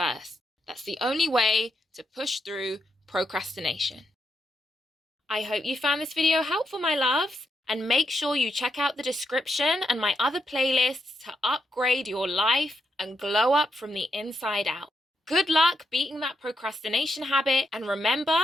That's the only way to push through procrastination. I hope you found this video helpful, my loves, and make sure you check out the description and my other playlists to upgrade your life and glow up from the inside out. Good luck beating that procrastination habit, and remember,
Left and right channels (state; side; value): normal; both; correlation 0.82